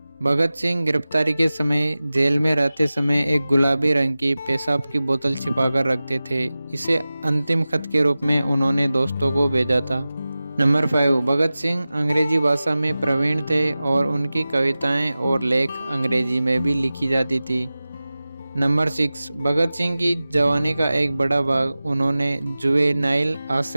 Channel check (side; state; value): both; inverted; correlation -0.96